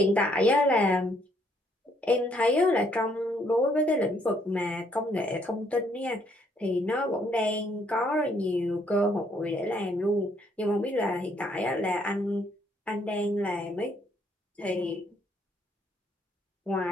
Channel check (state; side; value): normal; both; correlation 0.68